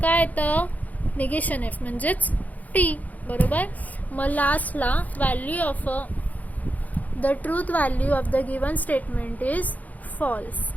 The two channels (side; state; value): right; late; 0.078 ms